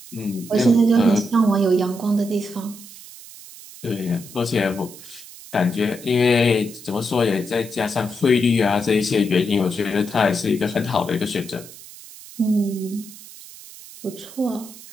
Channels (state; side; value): noise; right; hiss, 17 dB below the sound